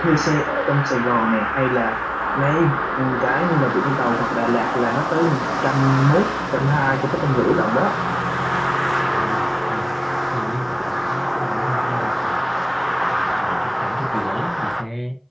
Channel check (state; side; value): identical; both; correlation 1.00